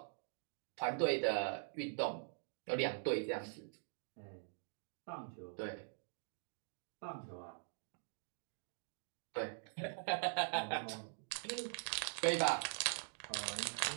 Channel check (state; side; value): silent; left; digital silence